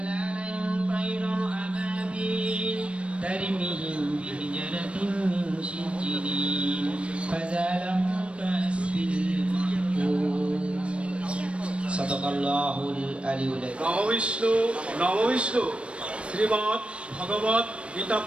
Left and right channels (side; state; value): left; late; 0.060 ms